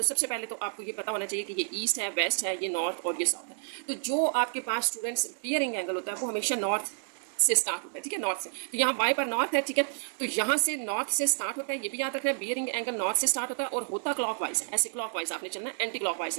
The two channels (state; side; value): silent; left; digital silence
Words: सबसे पहले तो आपको ये पता होना चाहिए कि ये ईस्ट है, वेस्ट है, ये नॉर्थ और ये साउथ है। तो जो आपके पास स्टूडेंट्स बियरिंग एंगल होता है वो हमेशा नॉर्थ से स्टार्ट होता है, ठीक है, नॉर्थ से। तो यहाँ वाई पर नॉर्थ है, ठीक है, तो यहाँ से नॉर्थ से स्टार्ट होता है, ये भी याद रखना है, बियरिंग एंगल नॉर्थ से स्टार्ट होता है और होता क्लॉकवाइज है, ऐसे क्लॉकवाइज आपने चलना है, एंटी क्लॉकवाइज